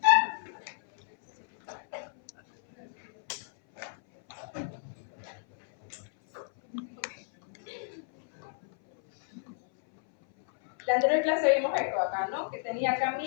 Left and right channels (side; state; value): right; silent; 57 dB below the other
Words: La anterior clase vimos esto acá, ¿no? Que tenía acá